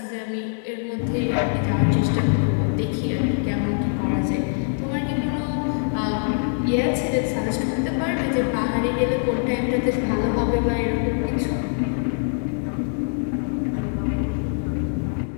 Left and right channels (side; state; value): right; silent; digital silence